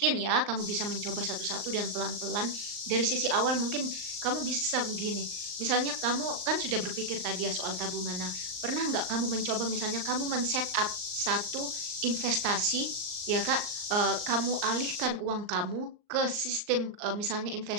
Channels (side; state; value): left; late; 39 ms